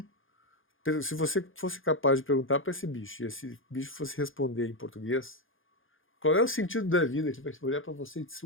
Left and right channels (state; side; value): late; right; 0.58 ms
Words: se você fosse capaz de perguntar para esse bicho, e esse bicho fosse responder em português, qual é o sentido da vida? Ele vai olhar para você e dizer,